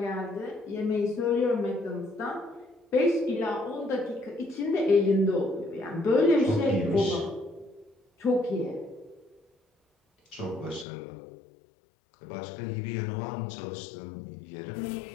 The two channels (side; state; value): right; drops out; at 10.9 s